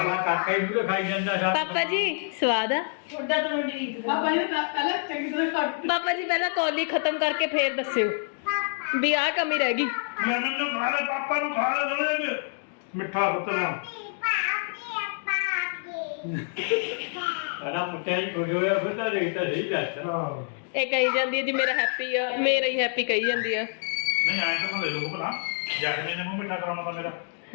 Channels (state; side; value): silent; right; 60 dB below the other